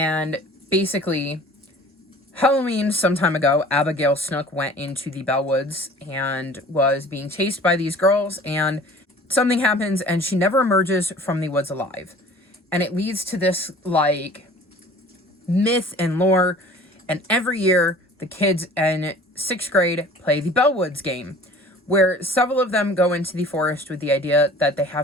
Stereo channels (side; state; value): both; normal; correlation 0.47